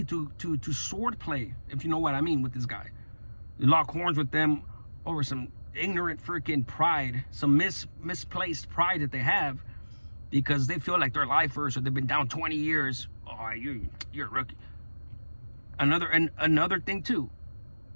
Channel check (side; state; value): both; inverted; correlation -1.00